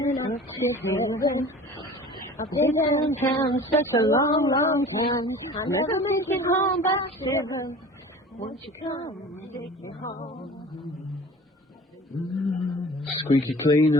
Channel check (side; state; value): both; normal; correlation 0.42